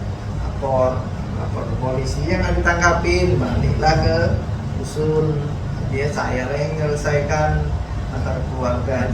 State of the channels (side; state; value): both; identical; correlation 1.00